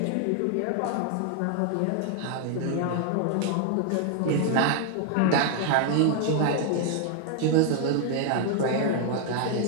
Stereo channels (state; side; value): different; both; correlation 0.00